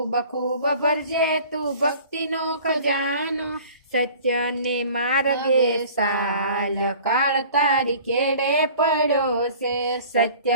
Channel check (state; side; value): inverted; both; correlation -0.47